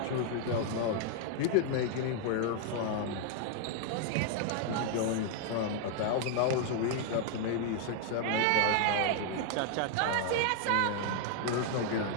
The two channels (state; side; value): different; both; correlation 0.00